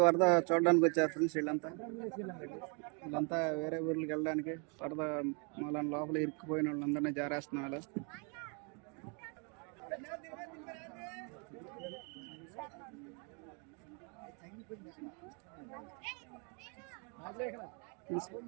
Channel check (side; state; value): left; quieter; 36.1 dB